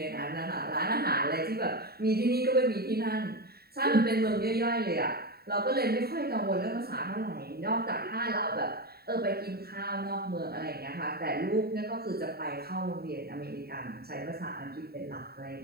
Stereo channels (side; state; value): left; late; 0.45 ms